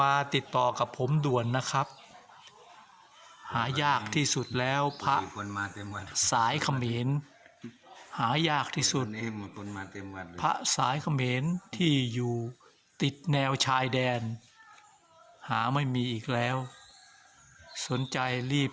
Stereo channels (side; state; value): both; identical; correlation 1.00